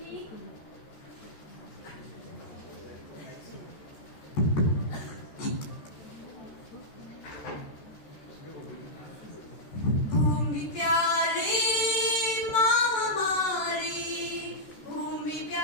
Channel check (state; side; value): late; right; 14 ms